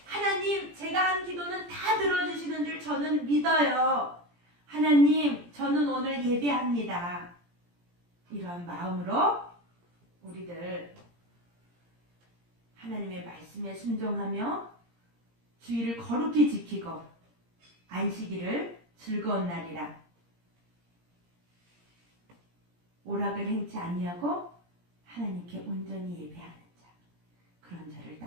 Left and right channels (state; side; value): late; left; 17 ms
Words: 하나님 제가 한 기도는 다 들어주시는 줄 저는 믿어요. 하나님 저는 오늘 예배합니다. 이러한 마음으로 우리들 하나님의 말씀에 순종하며 주의를 거룩히 지키고 안식일을 즐거운 날이라 오락을 행치 아니하고 하나님께 온전히 예배하는 자 그런 자를